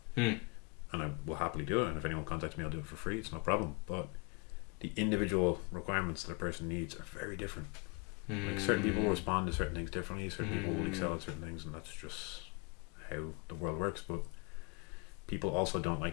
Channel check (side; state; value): right; quieter; 32.2 dB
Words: and I will happily do it, and if anyone contacts me, I'll do it for free. It's no problem. But the individual requirements that a person needs are very different. Like certain people will respond to certain things differently. Certain people will excel at certain things, and that's just how the world works. But people also don't